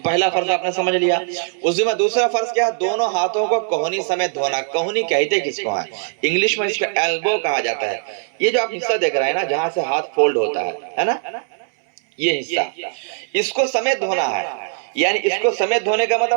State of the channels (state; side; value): silent; left; 66 dB below the other